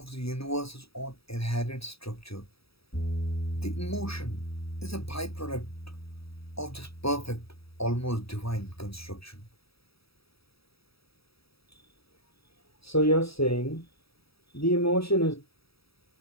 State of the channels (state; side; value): late; right; 0.77 ms